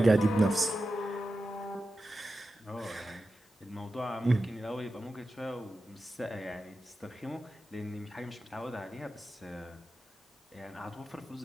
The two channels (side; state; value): both; normal; correlation 0.92